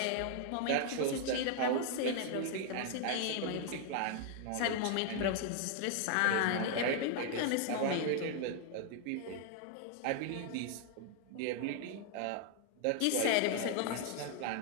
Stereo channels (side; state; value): both; different; correlation 0.00